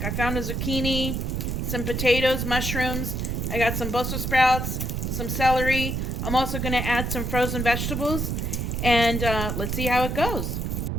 I found a zucchini, some potatoes, mushrooms, I got some Brussels sprouts, some celery. I'm also going to add some frozen vegetables, and let's see how it goes.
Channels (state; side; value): noise; right; rumble, 1 dB below the sound